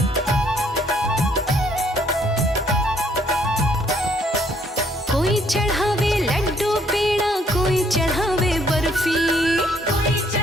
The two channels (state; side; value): normal; both; correlation 0.66